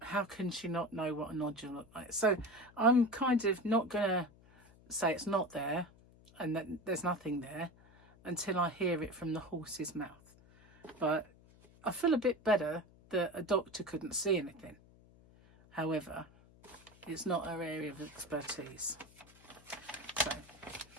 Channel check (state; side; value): noise; left; hum, 25 dB below the sound